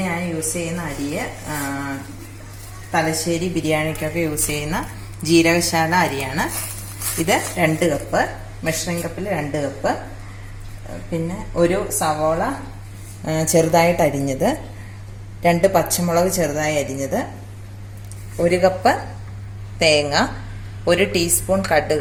ഞാൻ യൂസ് ചെയ്യുന്ന അരിയെ തലശ്ശേരി ബിരിയാണിക്കൊക്കെ യൂസ് ചെയ്യുന്ന ജീരകശാല അരിയാണ്. ഇത് 2 കപ്പ്, മെഷറിംഗ് കപ്പിൽ 2 കപ്പ്. പിന്നെ ഒരു സവോള ചെറുതായിട്ട് അരിഞ്ഞത്, 2 പച്ചമുളക് ചെറുതായി അരിഞ്ഞത്, 1 കപ്പ് തേങ്ങ, 1 ടീസ്പൂൺ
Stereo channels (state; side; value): identical; both; correlation 1.00